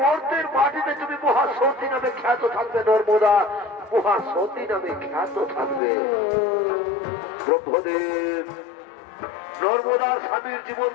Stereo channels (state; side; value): drops out; right; at 5.8 s